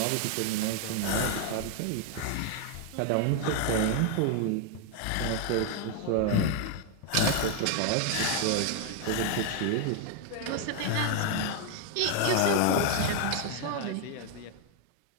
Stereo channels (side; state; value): both; different; correlation 0.00